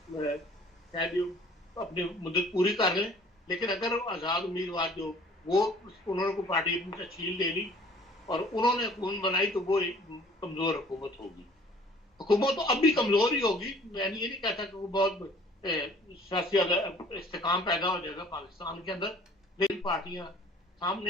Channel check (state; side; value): normal; both; correlation 0.52